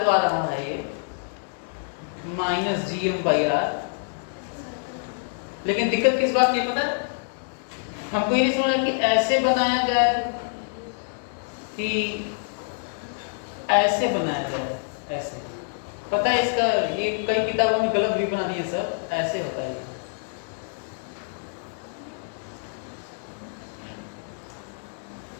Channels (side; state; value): right; silent; digital silence